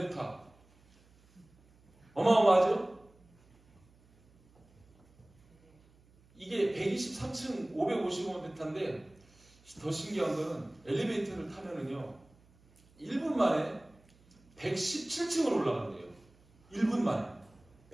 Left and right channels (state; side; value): noise; right; hum, 30 dB below the sound